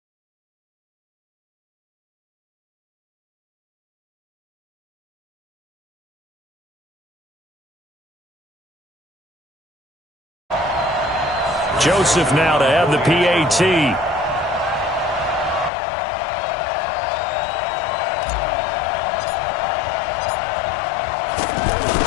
Joseph now to have the PAT.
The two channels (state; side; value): drops out; right; at 15.7 s